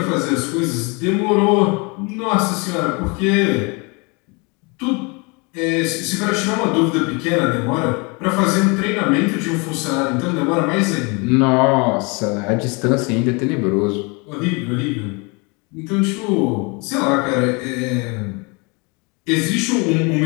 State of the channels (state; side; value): quieter; right; 29.9 dB